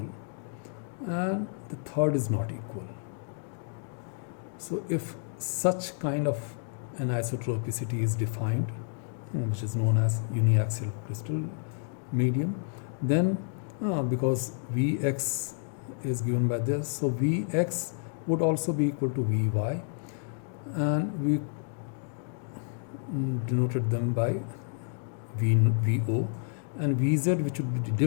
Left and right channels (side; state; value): right; silent; 58 dB below the other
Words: and the third is not equal. So if such kind of anisotropicity is defined, which is known as uniaxial crystal medium, then because Vx is given by this, so Vx would also be equal to Vy, and we denoted them by Vo, and Vz, which would be